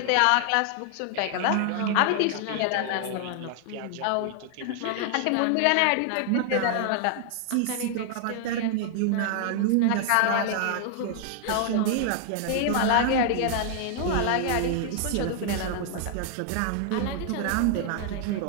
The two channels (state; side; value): different; both; correlation 0.00